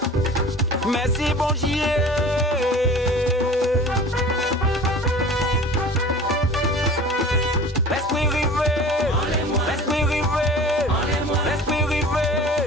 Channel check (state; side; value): normal; both; correlation 0.41